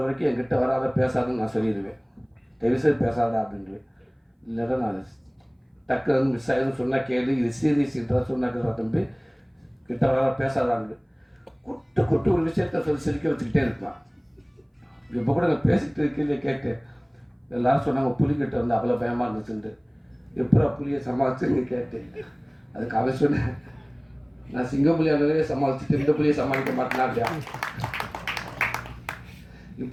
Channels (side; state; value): both; identical; correlation 1.00